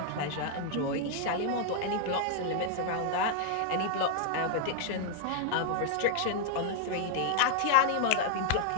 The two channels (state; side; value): different; both; correlation 0.00